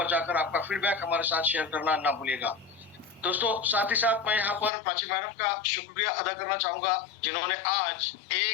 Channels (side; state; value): right; drops out; at 4.7 s